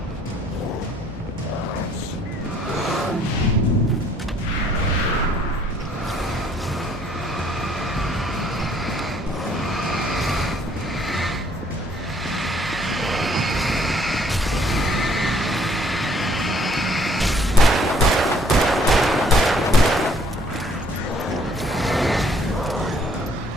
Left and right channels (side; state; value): both; normal; correlation 0.63